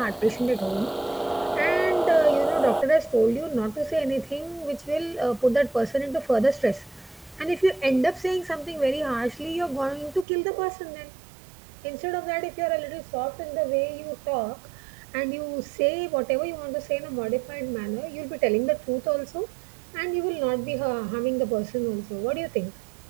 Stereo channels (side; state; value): left; drops out; at 10.2 s